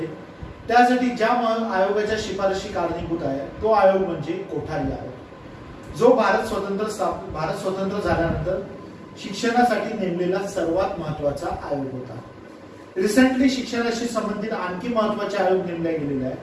त्यासाठी ज्या आयोगाच्या शिफारशी कारणीभूत आहे तो आयोग म्हणजे कोठारी आयोग, जो भारत स्वतंत्र झाल्यानंतर शिक्षणासाठी नेमलेला सर्वात महत्वाचा आयोग होता। रिसेंटली शिक्षणाशी संबंधित आणखी महत्वाचे आयोग नेमले गेलेले आहे,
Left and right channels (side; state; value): both; identical; correlation 1.00